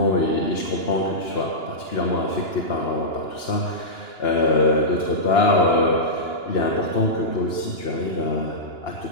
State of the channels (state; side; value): late; right; 2.9 ms